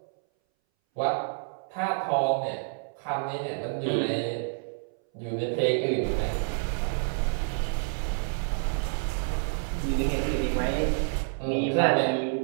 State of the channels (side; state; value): left; silent; 59 dB below the other